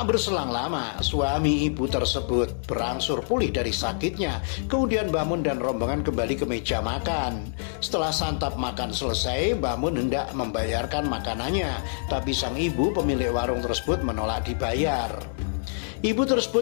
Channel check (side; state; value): right; silent; digital silence